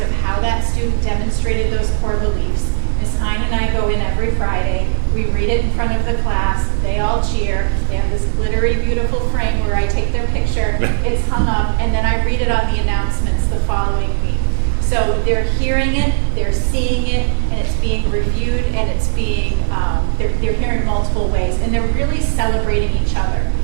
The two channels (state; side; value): silent; left; digital silence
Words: of how that student demonstrated those core beliefs. Ms. Hein and I go in every Friday. We read it in front of the class. They all cheer. They have this glittery, beautiful frame where I take their picture. It's hung up, and then I read it on the announcements the following week. So they're hearing it, they're seeing it, and it's being reviewed, and it's being, they're hearing it multiple ways, and they're really celebrating each other.